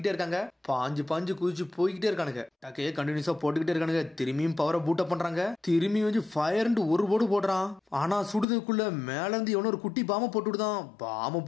இருக்காங்க. பாஞ்சு குதிச்சு போய்கிட்டே இருக்கானுங்க. டக்கையே கண்டினியூஸா போட்டுக்கிட்டே இருக்கானுங்க. திரும்பியும் பவரை பூட் அப் பண்றாங்க. திரும்பி வந்து ஃபயர்னு ஒரு போடு போடுறான். ஆனா சுடுறதுக்குள்ள மேல இருந்து எவனோ ஒரு குட்டி பாம்பை போட்டு விடுதான். பாம்பை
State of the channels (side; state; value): right; drops out; at 8.5 s